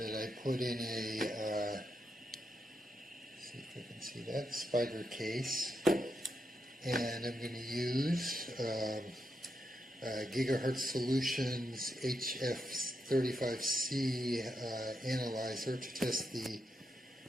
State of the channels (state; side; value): normal; both; correlation 0.84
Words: I put in a, see if I can see that, spider case. And I'm going to use Gigahertz Solutions HF35C analyzer to test the